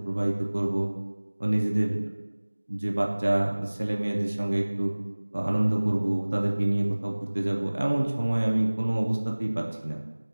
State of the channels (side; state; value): both; inverted; correlation -1.00